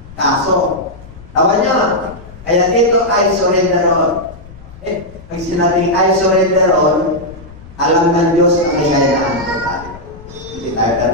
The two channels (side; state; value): left; noise; rumble, 19 dB below the sound